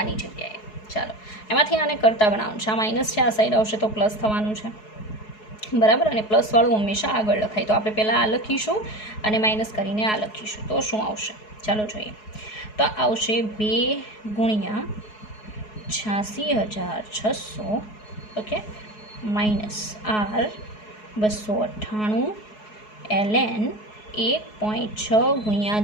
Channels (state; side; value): late; right; 4.7 ms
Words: જગ્યાએ. ચાલો એમાંથી આને કરતા બનાવવાનું છે, આ માઇનસ છે, આ સાઈડ આવશે તો પ્લસ થવાનું છે, બરાબર. અને પ્લસવાળું હંમેશા આગળ લખાય, તો આપણે પહેલાં આ લખીશું અને માઇનસ કરીને આ લખીશું, તો શું આવશે ચાલો જોઈએ. તો આવશે 2 ગુણ્યા 86,600 ઓકે -R 298 ln 1.6 ગુણ્યા